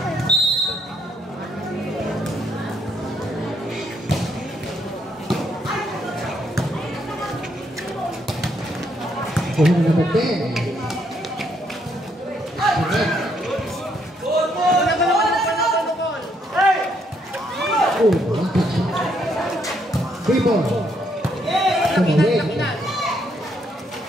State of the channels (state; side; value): normal; both; correlation 0.73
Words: Kuhin number 10. Oh, one touch. 3 ball. Tumawid.